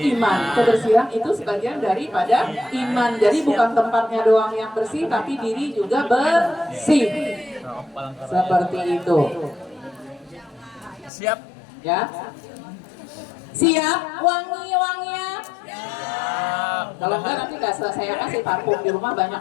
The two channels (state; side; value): drops out; right; at 11.1 s